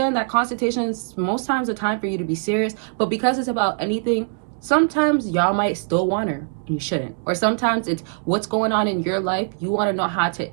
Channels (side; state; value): left; silent; 64 dB below the other